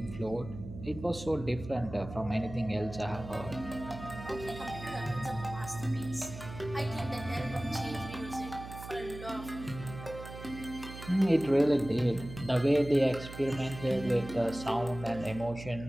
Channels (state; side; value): noise; right; hum, 12 dB below the sound